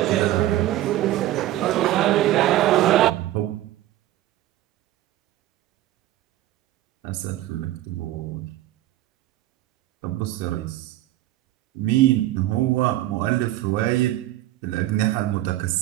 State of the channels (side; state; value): left; quieter; 14.8 dB